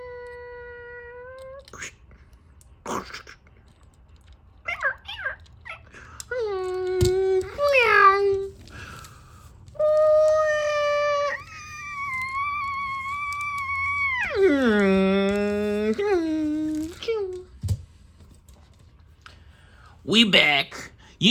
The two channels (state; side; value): identical; both; correlation 1.00